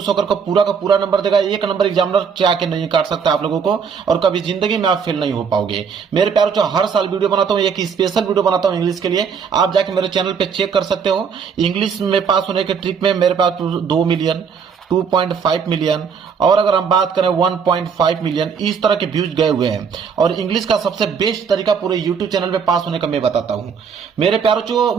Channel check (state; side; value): quieter; left; 6.4 dB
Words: होकर पूरा का पूरा नंबर देगा। एक नंबर एग्जामिनर चाह के नहीं काट सकता आप लोगों को, और कभी जिंदगी में आप फेल नहीं हो पाओगे। मेरे प्यारे बच्चों, हर साल वीडियो बनाता हूं, एक स्पेशल वीडियो बनाता हूं इंग्लिश के लिए। आप जाके मेरे चैनल पे चेक कर सकते हो। इंग्लिश में पास होने के ट्रिक में मेरे पास 2 मिलियन, 2.5 मिलियन, और अगर हम बात करें 1.5 मिलियन, इस तरह के व्यूज गए हुए हैं। और इंग्लिश का सबसे बेस्ट तरीका पूरे यूट्यूब चैनल पे पास होने का मैं बताता हूं। मेरे प्यारों चो,